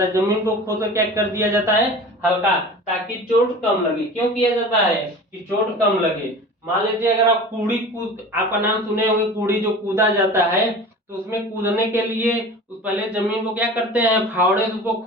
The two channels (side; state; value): both; normal; correlation 0.37